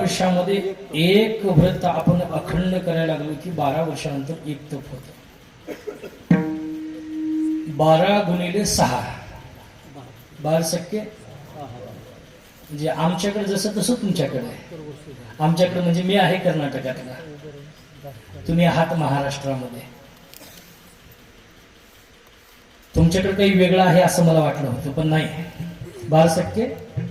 एक व्रत आपण अखंड करायला लागलो की 12 वर्षानंतर एक तप होतं. 12 गुणिले 6 12 म्हणजे आमच्याकडे जसं तसं तुमच्याकडे आहे. आमच्याकडे म्हणजे मी आहे कर्नाटकातला, तुम्ही आहात महाराष्ट्रामध्ये. तुमच्याकडे काही वेगळं आहे असं मला वाटलं होतं, पण नाही.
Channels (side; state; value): both; identical; correlation 1.00